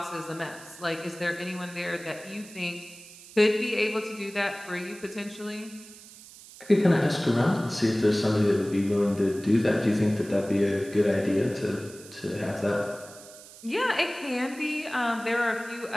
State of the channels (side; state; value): right; noise; hiss, 19 dB below the sound